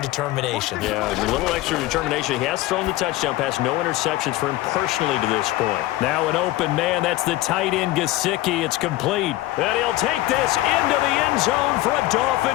Yeah, a little extra determination. He has thrown the touchdown pass. No interceptions for him personally to this point. Now an open man. That's the tight end, Gesicki. It's complete. And he'll take this into the end zone for a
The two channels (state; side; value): quieter; right; 16.9 dB